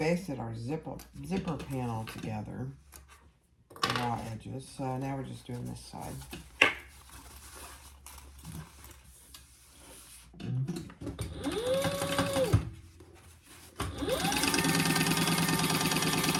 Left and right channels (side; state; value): both; identical; correlation 1.00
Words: our zipper panel together, the raw edges. So now we're just doing this side.